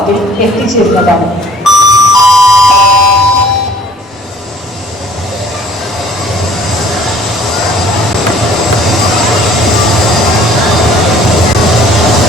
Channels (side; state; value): both; normal; correlation 0.54